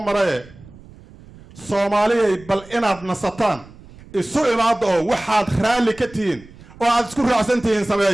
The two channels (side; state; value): right; noise; rumble, 22 dB below the sound